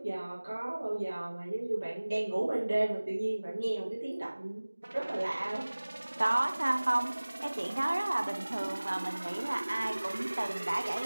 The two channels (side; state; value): both; inverted; correlation -1.00